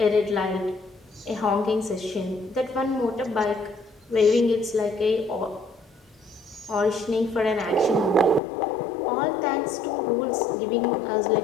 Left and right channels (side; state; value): right; drops out; at 8.4 s